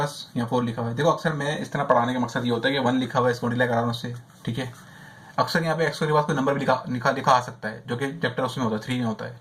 यहाँ 4 लिखा हुआ है। देखो अक्सर मैं इस तरह पढ़ाने का मकसद ये होता है कि 1 लिखा हुआ है, इसको मल्टीप्लाई करा रहा हूँ उससे, ठीक है। अक्सर यहाँ पे x² के पास कोई नंबर भी लिखा आ सकता है, जो कि चैप्टर उसमें होता है, 3 में होता है,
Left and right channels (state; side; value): identical; both; correlation 1.00